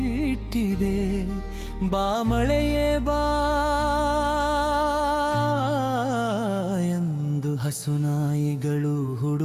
ಬಾ ಮಳೆಯೇ ಬಾ ಎಂದು ಹಸುನಾಯಿಗಳು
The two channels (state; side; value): identical; both; correlation 1.00